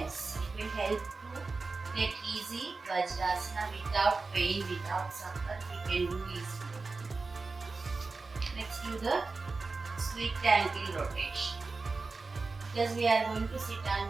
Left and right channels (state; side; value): quieter; left; 4.0 dB